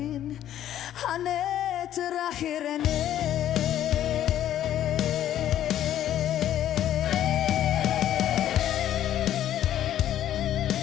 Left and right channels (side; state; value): right; quieter; 11.6 dB